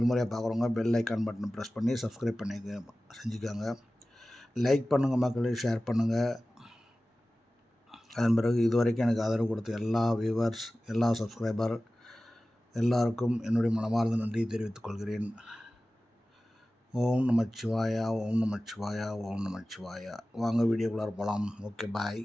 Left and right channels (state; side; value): normal; both; correlation 0.96